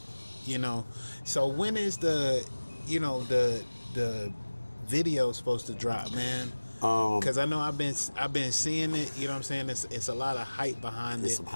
you know? So when is the video supposed to drop, man? Because I know I've been seeing it, you know what I'm saying? It's a lot of hype behind it. Some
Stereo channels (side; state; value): both; inverted; correlation -1.00